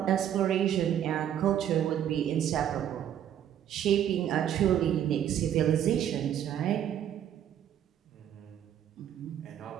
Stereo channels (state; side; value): quieter; left; 10.2 dB